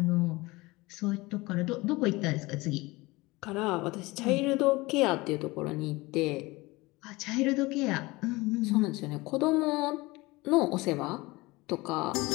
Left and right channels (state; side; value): quieter; right; 22.0 dB